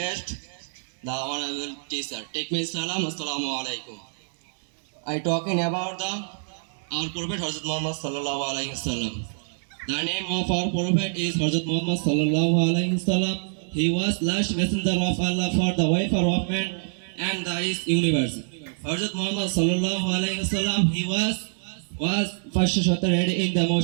the honorable teacher. Take me salam. Assalamu alaikum. I talking about our prophet Hazrat Muhammad sallallahu alaihi wasallam. The name of our prophet is Hazrat Muhammad sallallahu alaihi wasallam. He was last messenger of Allah for the wafer of man and the universe. Hazrat Muhammad sallallahu alaihi wasallam, he was first shattered in the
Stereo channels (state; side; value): silent; left; digital silence